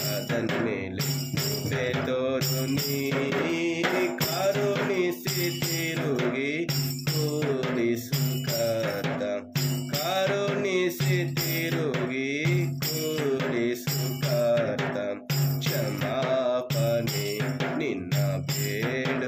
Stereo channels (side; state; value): both; identical; correlation 1.00